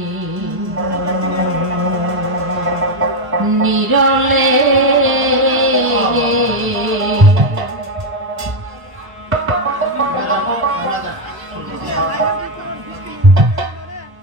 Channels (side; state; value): left; late; 1.0 ms